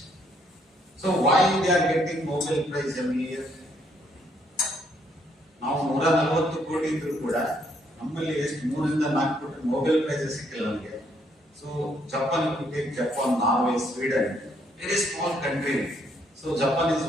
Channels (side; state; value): both; normal; correlation 0.70